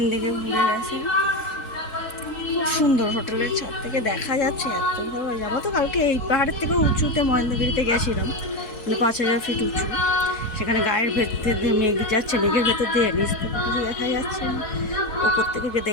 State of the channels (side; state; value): right; late; 4.6 ms